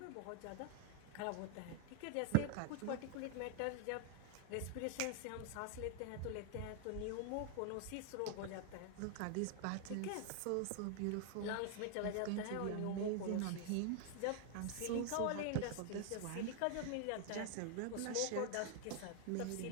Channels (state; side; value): different; both; correlation 0.00